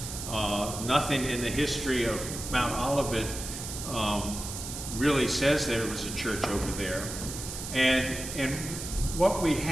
nothing in the history of Mount Olivet really says there was a church over there. And what we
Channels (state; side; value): noise; right; hiss, 8 dB below the sound